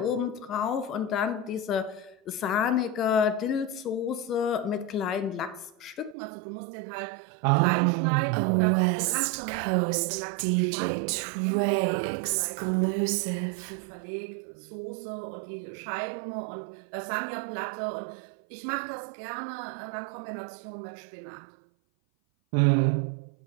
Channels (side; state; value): left; drops out; at 6.2 s